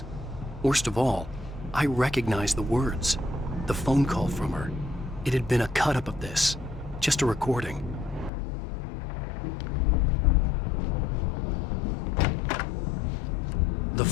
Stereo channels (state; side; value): drops out; right; at 8.3 s